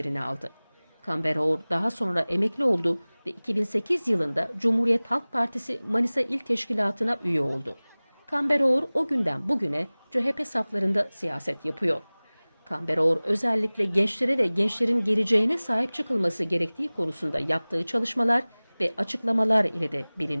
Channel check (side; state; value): both; inverted; correlation -1.00